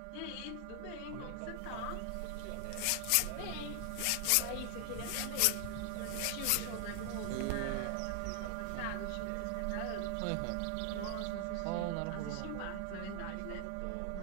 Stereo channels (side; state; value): both; different; correlation 0.00